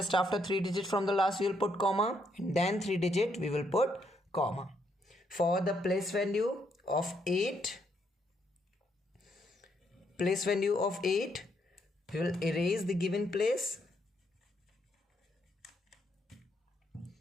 after 3 digits from the last we will put comma, and then 3 digit we will put comma. For the place value of 8, we will erase the given place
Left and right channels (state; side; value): normal; both; correlation 0.74